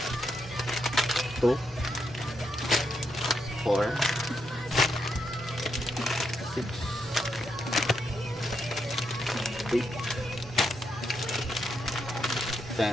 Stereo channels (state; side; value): normal; both; correlation 0.81